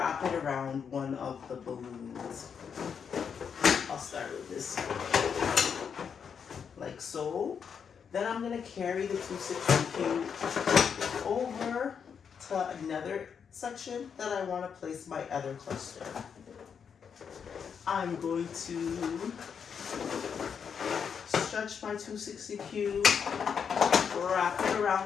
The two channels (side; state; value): right; quieter; 6.9 dB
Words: it around one of the balloons. I'll start with this one, like so. Then I'm going to carry the 260Q over to another section that I want to place my other cluster. I'm going to stretch my 260Q, wrap it